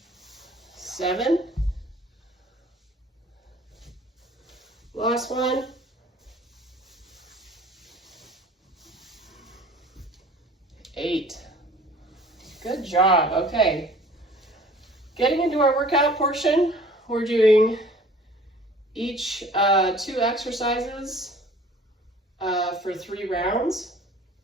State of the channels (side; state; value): both; normal; correlation 0.50